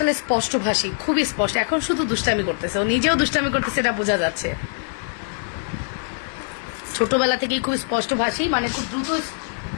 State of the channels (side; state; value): right; silent; digital silence